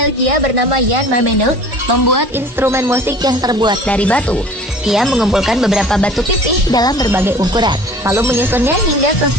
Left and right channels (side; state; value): both; normal; correlation 0.45